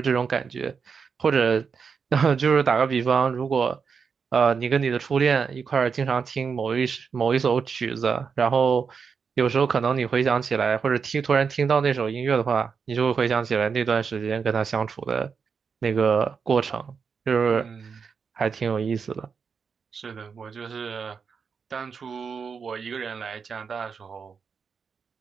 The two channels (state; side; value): quieter; left; 5.9 dB